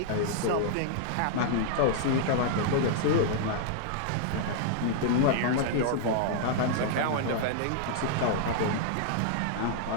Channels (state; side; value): different; both; correlation -0.01